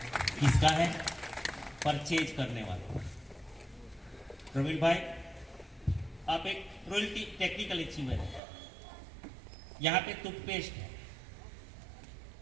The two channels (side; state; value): left; drops out; at 8.4 s